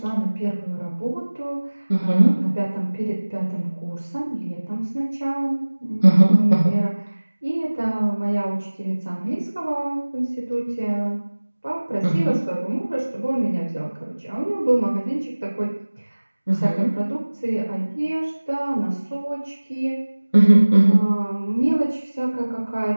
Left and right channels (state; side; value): inverted; both; correlation -1.00